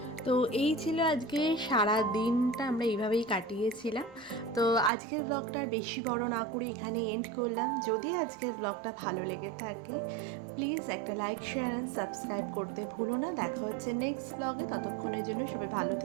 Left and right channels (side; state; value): left; drops out; at 4.9 s